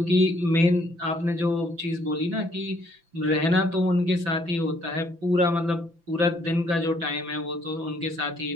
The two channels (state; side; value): late; left; 5.9 ms